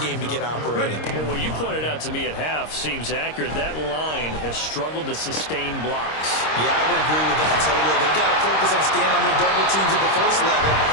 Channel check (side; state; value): right; late; 26 ms